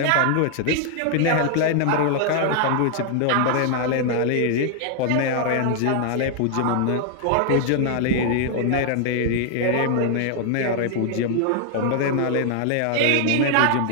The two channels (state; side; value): different; both; correlation 0.00